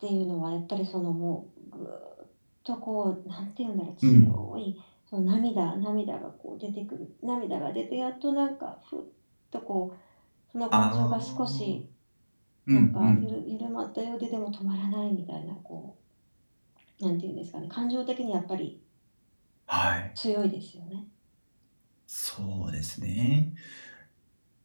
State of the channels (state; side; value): inverted; both; correlation -1.00